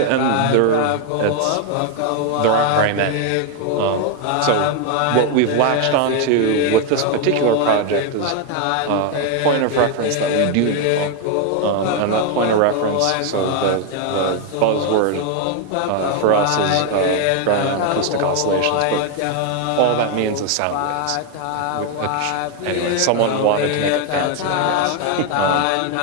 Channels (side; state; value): both; different; correlation 0.01